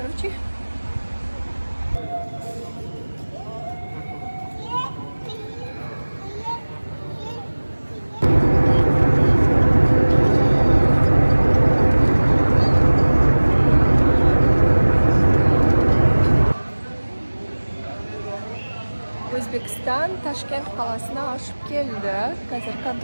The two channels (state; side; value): inverted; both; correlation -1.00